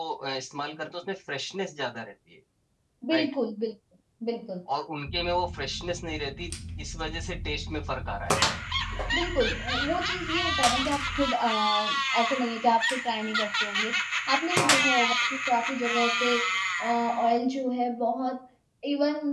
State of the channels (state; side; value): identical; both; correlation 1.00